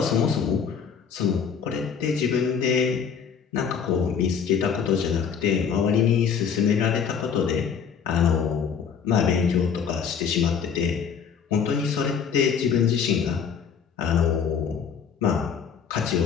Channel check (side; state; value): right; quieter; 7.0 dB